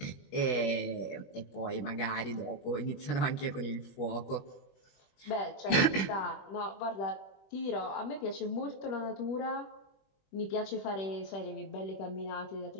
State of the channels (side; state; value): right; late; 21 ms